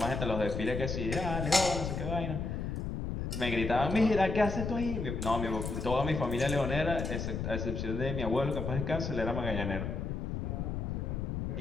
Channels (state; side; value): noise; left; rumble, 3 dB below the sound